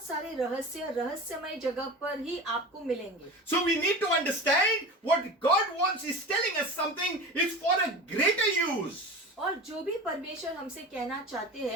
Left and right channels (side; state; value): both; normal; correlation 0.32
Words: सारे रहस्यमय जगह पर ही आपको मिलेंगे। So we need to understand what God wants is telling us something is for a greater use. और जो भी परमेश्वर हमसे कहना चाहते